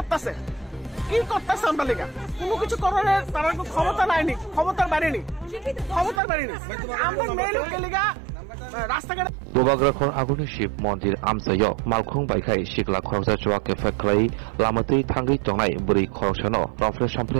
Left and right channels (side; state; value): left; drops out; at 6.2 s